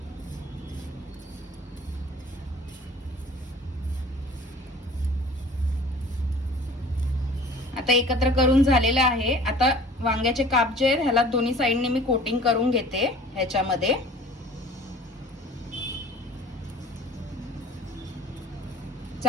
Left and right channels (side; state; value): both; normal; correlation 0.47